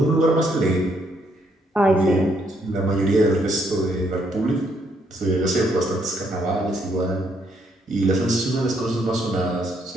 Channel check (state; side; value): normal; both; correlation 0.72